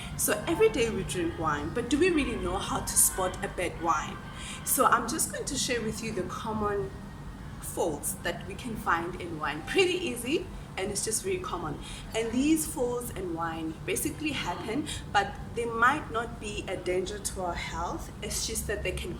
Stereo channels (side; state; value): both; identical; correlation 1.00